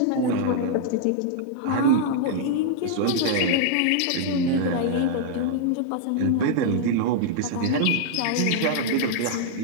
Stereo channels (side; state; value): both; different; correlation -0.01